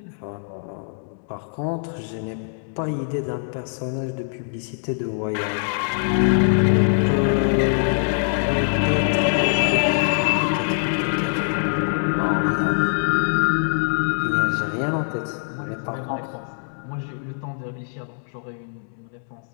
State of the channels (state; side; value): silent; right; 63 dB below the other